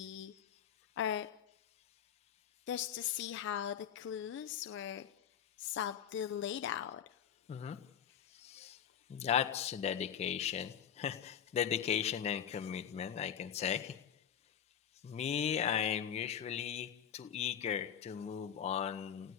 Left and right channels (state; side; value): quieter; right; 8.8 dB